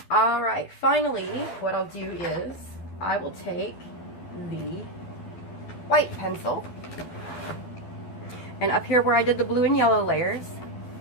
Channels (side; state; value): right; late; 12 ms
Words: Alright, finally, what I'll do is I will take the white pencil, and up here where I did the blue and yellow layers,